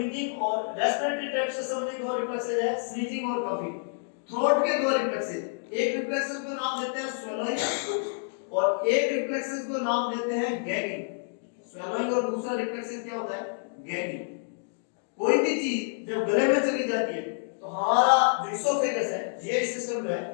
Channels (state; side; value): silent; right; digital silence